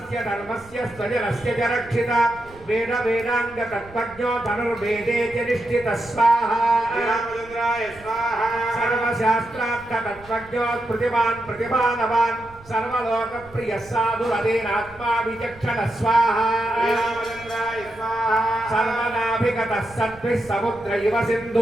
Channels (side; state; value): right; noise; rumble, 23 dB below the sound